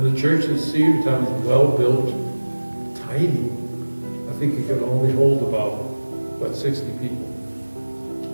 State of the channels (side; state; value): both; inverted; correlation -1.00